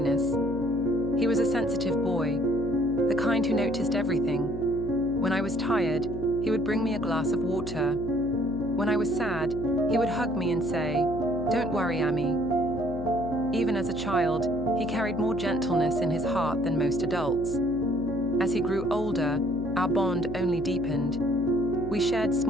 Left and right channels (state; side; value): noise; left; hum, 9 dB below the sound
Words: He was a sensitive boy, the kind who noticed everything. When I was tired, he would bring me a glass of water. When I was sad, he would hug me and say, "Don't worry, Auntie." Even as a child, he carried more gentleness in his heart than most adults. As he grew older, our bond only deepened. We shared